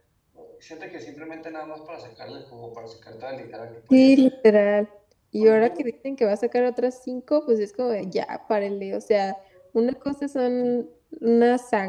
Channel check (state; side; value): identical; both; correlation 1.00